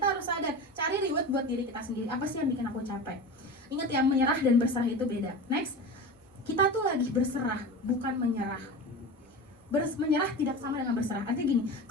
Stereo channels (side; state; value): both; normal; correlation 0.29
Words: Kita harus sadar, cari reward buat diri kita sendiri. Apa sih yang bikin aku capek? Ingat ya, menyerah dan berserah itu beda. Next, kita tuh lagi berserah, bukan menyerah. Menyerah tidak sama dengan berserah. Artinya gini,